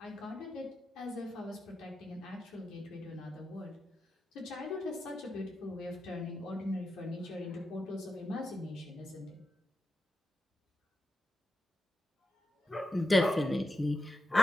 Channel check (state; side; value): normal; both; correlation 0.88